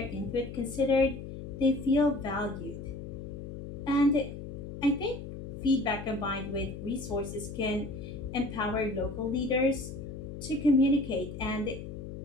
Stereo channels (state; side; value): noise; left; hum, 9 dB below the sound